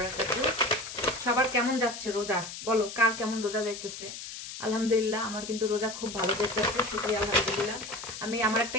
সবার কেমন যাচ্ছে রোজা? বলো কার কেমন রোজা যাইতেছে? আলহামদুলিল্লাহ আমার কিন্তু রোজা খুব ভালো যাইতেছে, শুকরিয়া আলহামদুলিল্লাহ। আমি আমার একটা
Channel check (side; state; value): left; noise; hiss, 10 dB below the sound